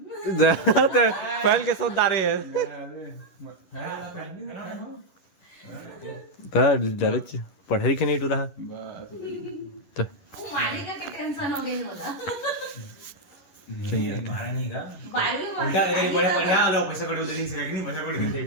पहल के सोदारे है डर पढ़े लिखे नहीं टूरा बस तो वो मारी का टेंशन हो गई होला सही है मारा नहीं का बारवी उल्टा ये बड़े बढ़िया आलो पैसा कड़ी उधर नहीं से नहीं पैसा कड़ी दे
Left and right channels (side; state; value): right; late; 11 ms